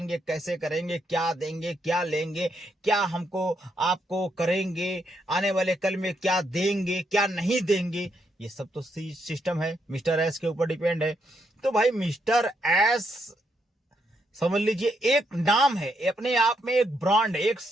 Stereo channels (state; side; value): normal; both; correlation 0.78